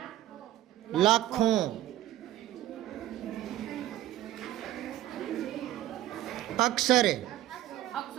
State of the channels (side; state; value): left; quieter; 14.3 dB